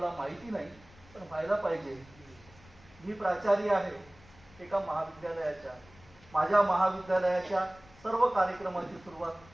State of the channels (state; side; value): noise; left; rumble, 24 dB below the sound